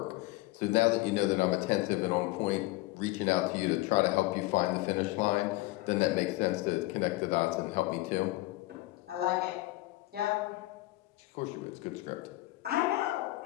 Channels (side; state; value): right; quieter; 19.3 dB